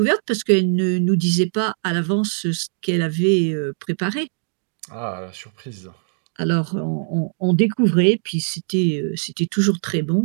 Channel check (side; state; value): left; silent; digital silence